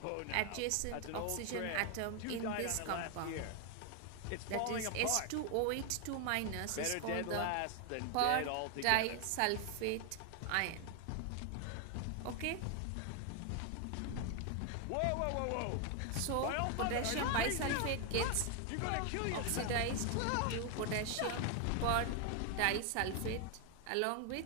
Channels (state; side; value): different; both; correlation 0.01